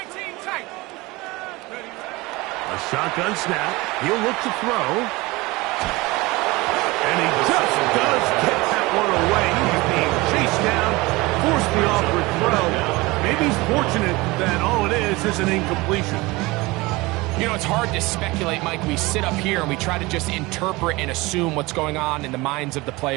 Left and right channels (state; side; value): quieter; left; 22.2 dB